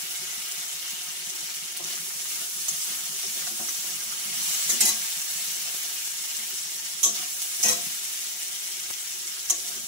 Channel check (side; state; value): left; late; 5.6 ms